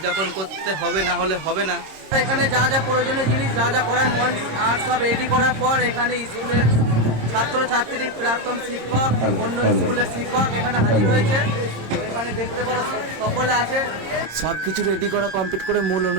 করতে হবে, না হলে হবে না। এখানে যা যা প্রয়োজনীয় জিনিস যা যা করার মঞ্চ আর সব রেডি করার পর এখানে স্কুলের ছাত্রছাত্রী, প্রাক্তন শিক্ষক, অন্য স্কুলের শিক্ষক এখানে হাজির হয়েছে। তো এখানে দেখতে পারো সকলে আছে। সব কিছু রেডি করা কমপ্লিট করে মূল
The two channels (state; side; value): late; left; 26 ms